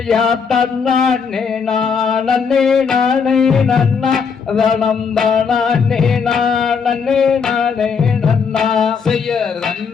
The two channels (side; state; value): right; quieter; 5.9 dB